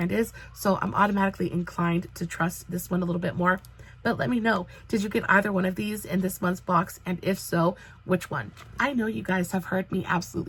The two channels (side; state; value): both; identical; correlation 1.00